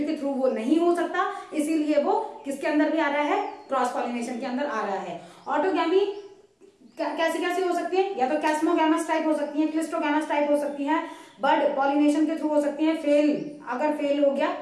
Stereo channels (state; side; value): identical; both; correlation 1.00